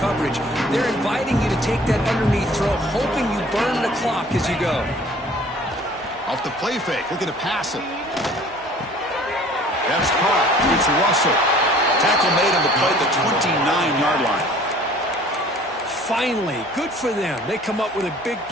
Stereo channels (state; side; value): normal; both; correlation 0.51